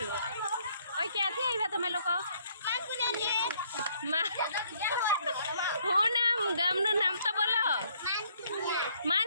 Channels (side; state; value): both; inverted; correlation -0.65